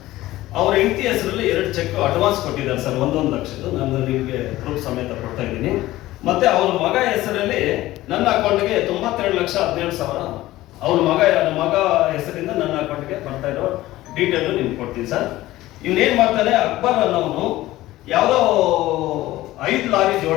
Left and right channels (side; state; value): right; quieter; 16.5 dB